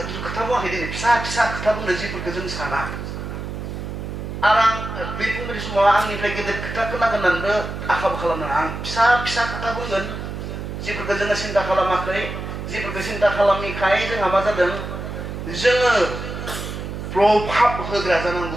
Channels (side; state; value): right; noise; hum, 7 dB below the sound